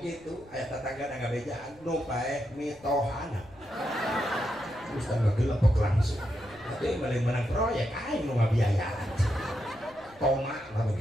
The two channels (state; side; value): noise; left; rumble, 26 dB below the sound